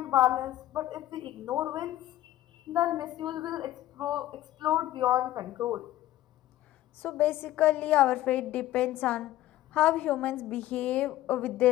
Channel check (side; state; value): right; quieter; 14.4 dB